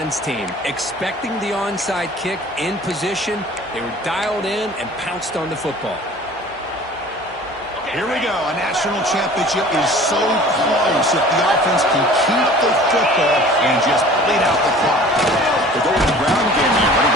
team. Expecting the onside kick in position. They were dialed in and pounced on the football. Here we go. A national championship is so close if the offense can keep the football and just bleed out the clock. The golden ground game here. Running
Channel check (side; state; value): both; normal; correlation 0.46